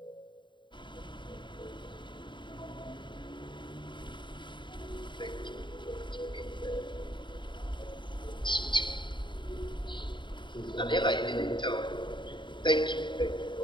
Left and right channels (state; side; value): late; right; 0.23 ms